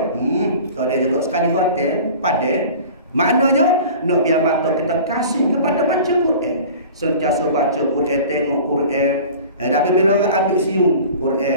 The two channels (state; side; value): inverted; both; correlation -0.41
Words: Tak ada juga. Sekali hotel, padan. Maknanya nak biar mata kita kasih kepada baca Quran. Sentiasa baca Quran, tengok Quran. Tapi bila orang ambil siung Quran